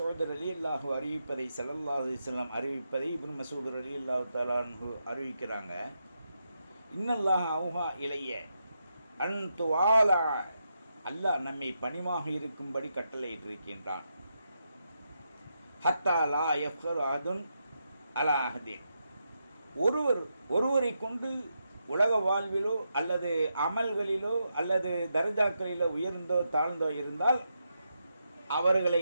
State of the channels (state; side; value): inverted; both; correlation -0.84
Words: ரலியல்லாஹு அறிவிப்பதை, ஸல்லல்லாஹு அலைஹி வஸல்லம் அறிவிப்பதை இப்னு மஸ்ஊத் ரலியல்லாஹு தஆலா அன்ஹு அறிவிக்கிறாங்க. இன்னல்லாஹ அவுஹா இலைய அன் துவாலா, அல்லாஹ் நம்மை பணிவாக இருக்கும்படி கட்டளையிட்டிருக்கின்றான். ஹத்தா லா யஃப்கரு அஹதுன் அலா அஹதின், ஒருவரை கொண்டு உலக வாழ்விலோ அல்லது அமல்களிலோ அல்லது தர்ஜாக்களிலோ உயர்ந்தோ தாழ்ந்தோ இருந்தால் அவர்களை